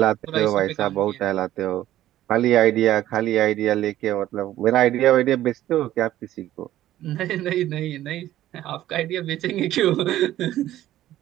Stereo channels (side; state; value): left; quieter; 13.6 dB